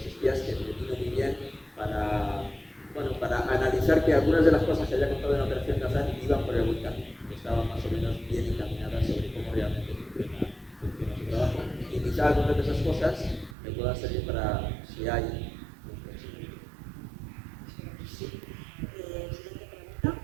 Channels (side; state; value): left; drops out; at 13.6 s